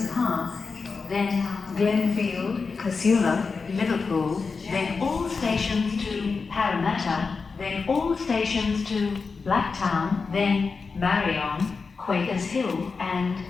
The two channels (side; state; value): right; quieter; 4.7 dB